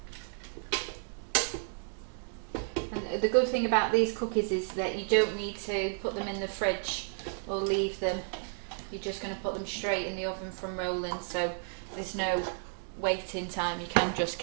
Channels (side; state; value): left; silent; 56 dB below the other